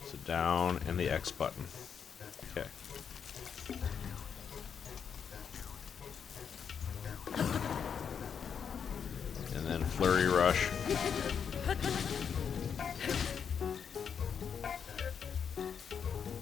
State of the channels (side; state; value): right; quieter; 7.2 dB